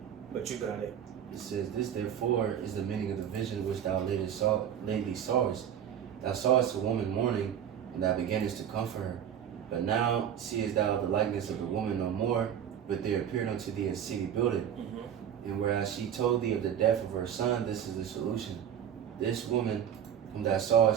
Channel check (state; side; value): quieter; left; 9.2 dB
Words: but you got it. It says, This therefore is the meaning of the vision which thou lately sawest. Thou sawest a woman mourning, and thou beginnest to comfort her. But now seest thou the likeness of the woman no more, but there appeared unto thee a city builded. And whereas she told thee of the death of her son, this is the solution. This woman whom thou